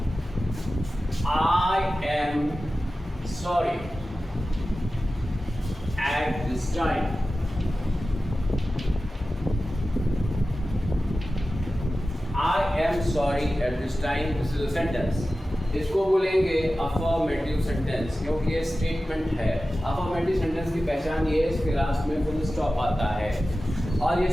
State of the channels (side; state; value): both; normal; correlation 0.94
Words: I am sorry at this time. I am sorry at this time. This is a sentence. इसको बोलेंगे अफर्मेटिव सेंटेंस क्योंकि ये स्टेटमेंट है. अफर्मेटिव सेंटेंस की पहचान ये है इसके लास्ट में फुल स्टॉप आता है और ये